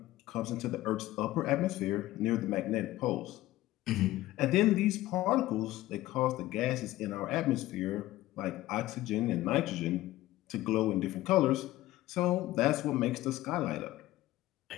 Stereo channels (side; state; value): right; quieter; 16.2 dB